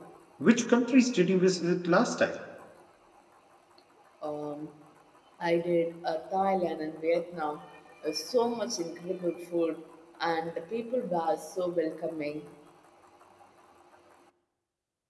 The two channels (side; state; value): both; identical; correlation 1.00